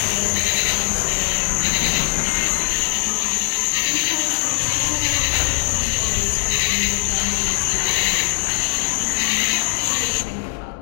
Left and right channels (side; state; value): right; silent; 66 dB below the other